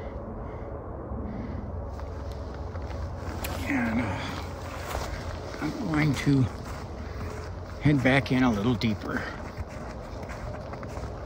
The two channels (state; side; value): identical; both; correlation 1.00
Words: And I'm going to head back in a little deeper.